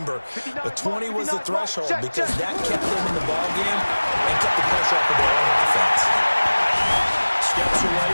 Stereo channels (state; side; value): inverted; both; correlation -1.00